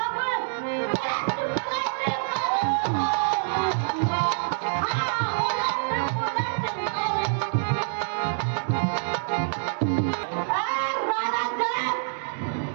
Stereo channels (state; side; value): silent; left; digital silence